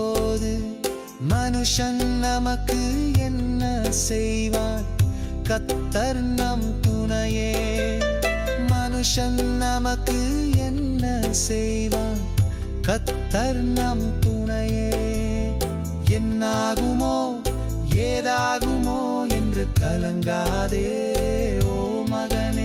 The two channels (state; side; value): identical; both; correlation 1.00